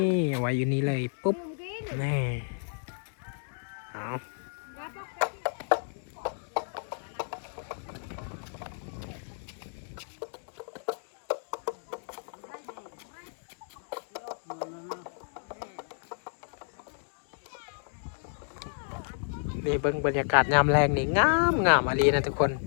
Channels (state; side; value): silent; right; digital silence